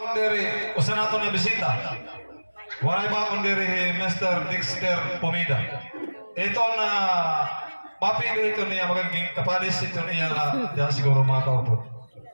akong diri, usa nato na bisita. Waray ba akong diri Mr. Dexter Pomida. Ito na mapili ito niya magiging kapalis ito niya na diyan siguro mga kaupod.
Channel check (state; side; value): inverted; both; correlation -1.00